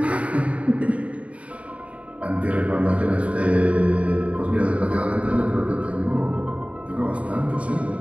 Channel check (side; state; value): left; late; 0.065 ms